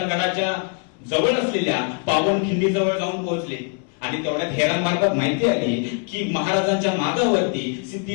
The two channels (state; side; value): quieter; right; 38.4 dB